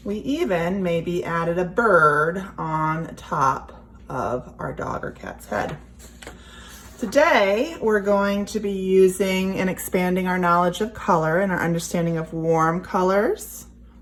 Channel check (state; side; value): identical; both; correlation 1.00